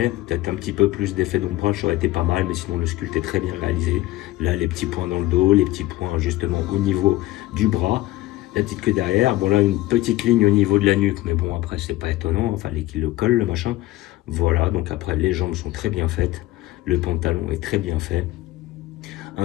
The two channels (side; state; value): right; quieter; 17.2 dB